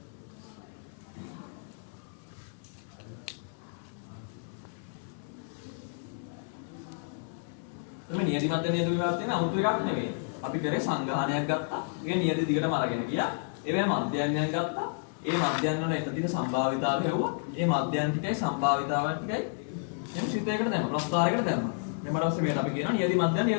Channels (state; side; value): silent; right; 57 dB below the other